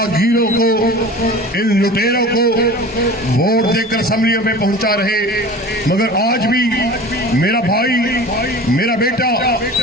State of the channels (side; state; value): both; normal; correlation 0.37